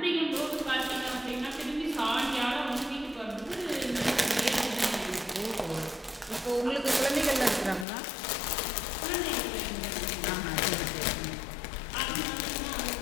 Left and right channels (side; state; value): right; drops out; at 7.9 s